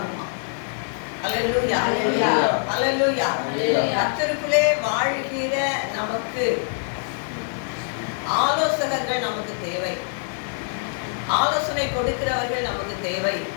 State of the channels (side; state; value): right; silent; 55 dB below the other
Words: அல்லேலூயா, அல்லேலூயா. கர்த்தருக்குள்ளே வாழ்கிற நமக்கு ஆலோசகர்கள் நமக்கு தேவை. ஆலோசனை கொடுக்கிறவர்கள் நமக்கு தேவை.